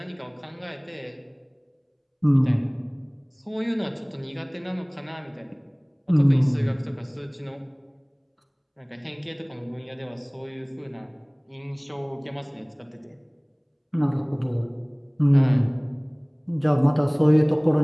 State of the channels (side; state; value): both; identical; correlation 1.00